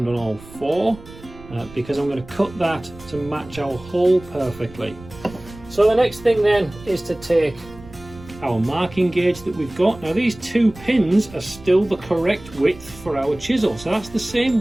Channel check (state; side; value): noise; right; rumble, 19 dB below the sound